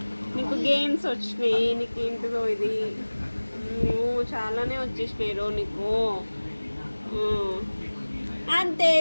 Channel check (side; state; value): both; inverted; correlation -1.00